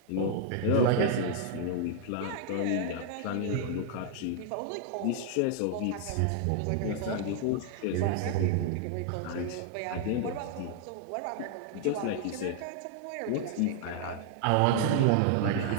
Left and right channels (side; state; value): both; different; correlation 0.00